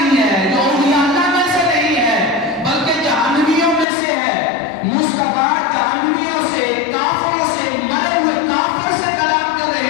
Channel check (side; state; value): right; drops out; at 3.9 s